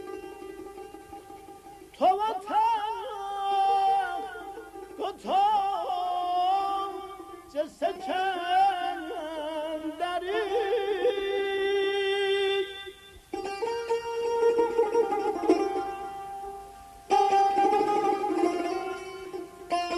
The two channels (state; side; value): identical; both; correlation 1.00